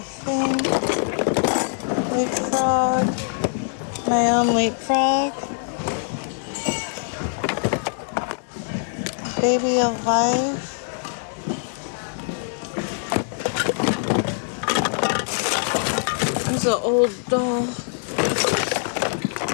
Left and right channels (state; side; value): silent; right; digital silence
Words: thing. Leapfrog. My own leapfrog. Baby alive. He's an old doll.